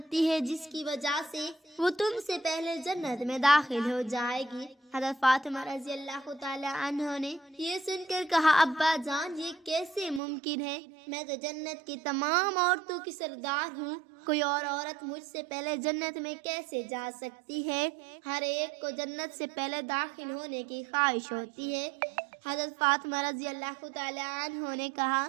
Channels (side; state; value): left; drops out; at 10.2 s